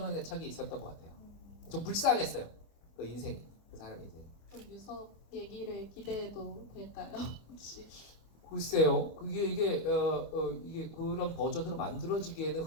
애착이 있었던 것 같아요. 좀 불쌍했어요. 그 인생, 그 사람 인생. 그럼 유석 얘기를 기대해도 될까요? 혹시? 글쎄요. 이게 그런 버전으로 만들어지기에는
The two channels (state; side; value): late; right; 25 ms